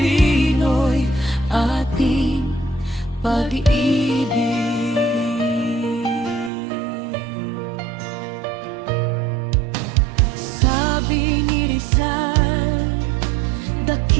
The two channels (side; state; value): left; drops out; at 6.5 s